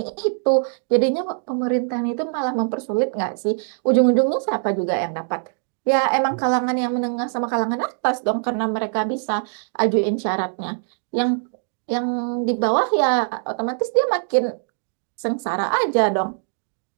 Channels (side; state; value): left; silent; digital silence